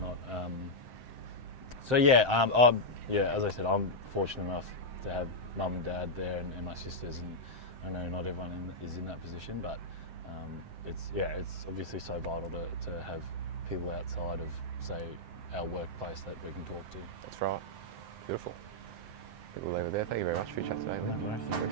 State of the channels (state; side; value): late; left; 7.7 ms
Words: So yeah, as I said, I'm fortunate enough to have mum and dad there and my sisters, and I know not everyone is in that position, but it's obviously so vital to have people outside of, say, our workplace that we can talk to. That's right. Beautiful. I think we'll leave it there. Thank you very much for your chat today. No worries.